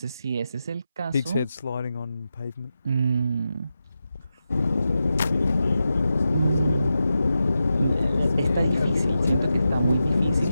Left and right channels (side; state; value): both; inverted; correlation -0.90